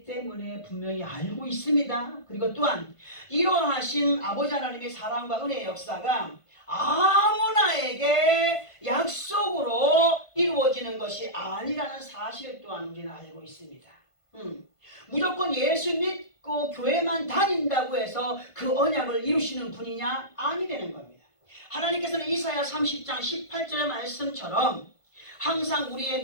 때문에 분명히 알고 있습니다. 그리고 또한 이러하신 아버지 하나님의 사랑과 은혜의 역사가 아무나에게 약속으로 이루어지는 것이 아니라는 사실 또한 우리는 알고 있습니다. 무조건 예수 믿고 교회만 다닌다고 해서 그 언약을 이루시는 분이냐? 아니라는 겁니다. 하나님께서는 이사야 30장 18절의 말씀처럼 항상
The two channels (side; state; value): right; late; 1.5 ms